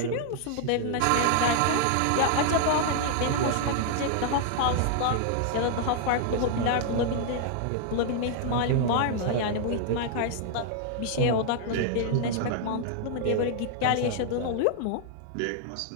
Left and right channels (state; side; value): different; both; correlation 0.00